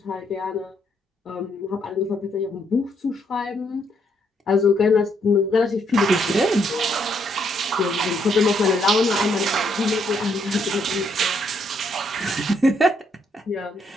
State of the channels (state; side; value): normal; both; correlation 0.73